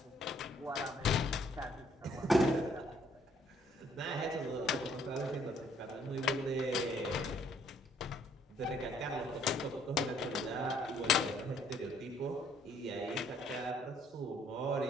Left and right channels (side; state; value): both; normal; correlation 0.64